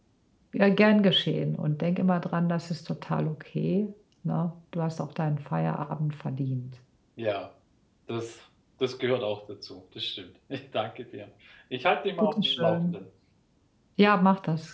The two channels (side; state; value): both; identical; correlation 1.00